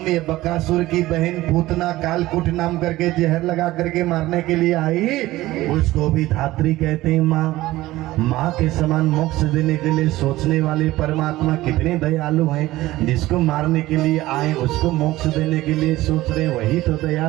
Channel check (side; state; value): left; quieter; 17.1 dB